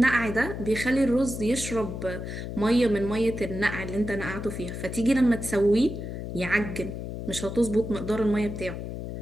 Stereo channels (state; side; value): noise; left; hum, 7 dB below the sound